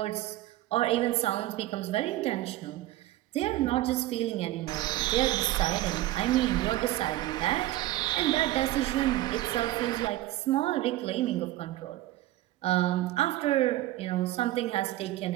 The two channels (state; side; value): quieter; left; 15.6 dB